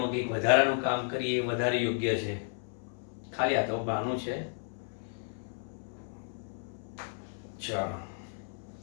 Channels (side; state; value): right; silent; 56 dB below the other